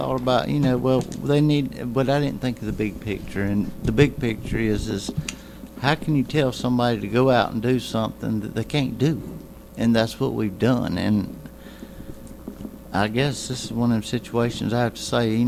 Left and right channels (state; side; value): identical; both; correlation 1.00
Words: about, you know, well, they need, but I didn't think of the big picture, and the big picture is how can you tell somebody to go out and do something that they can't do? And that's what we've done, and I guess this is one of them situations I have to say, you